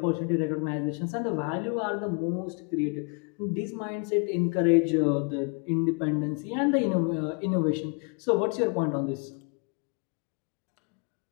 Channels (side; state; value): right; quieter; 37.7 dB